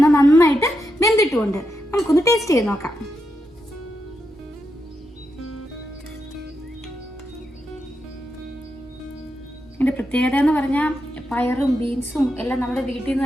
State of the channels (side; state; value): both; normal; correlation 0.85